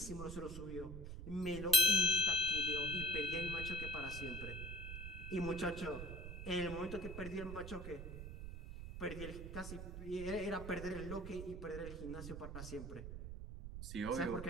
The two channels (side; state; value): right; noise; rumble, 8 dB below the sound